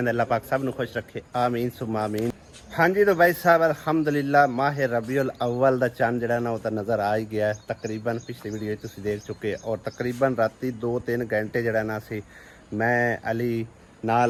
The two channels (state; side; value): identical; both; correlation 1.00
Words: अल्लाह पाक सब ਨੂੰ खुश रखे आमीन सुम्मा आमीन। ਹਾਂਜੀ तो भाई साहब अल्हम्दुलिल्लाह माह रबीउल अव्वल ਦਾ ਚੰਨ ਜਿਹੜਾ ਨਾ ਉਹ ਤਾਂ ਨਜ਼ਰ ਆ ਹੀ ਗਿਆ ਹੈ। ਤਕਰੀਬਨ ਪਿਛਲੀ ਵੀਡੀਓ ਤੁਸੀਂ ਦੇਖ ਚੁੱਕੇ ਔਰ ਤਕਰੀਬਨ ਰਾਤੀ 2-3 ਘੰਟੇ ਜਿਹੜਾ ਨਾ ਸੀ ਮੈਂ ਅਲੀ